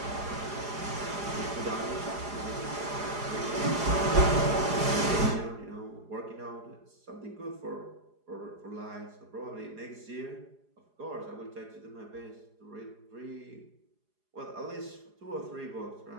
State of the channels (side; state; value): left; late; 4.8 ms